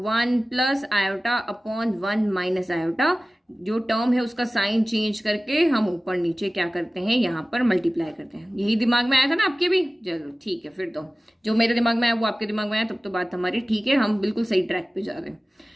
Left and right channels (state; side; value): normal; both; correlation 0.97